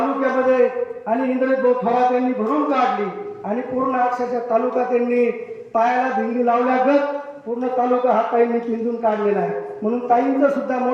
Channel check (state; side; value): identical; both; correlation 1.00